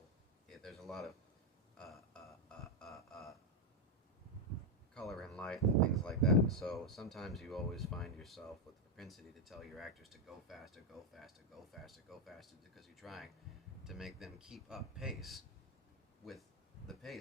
there's a lot of color and light and things like that. And so sometimes you always find yourself with the propensity to tell your actors to go faster, go faster, go faster, go faster, because you're trying to make them keep up pace with the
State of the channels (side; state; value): both; normal; correlation 0.04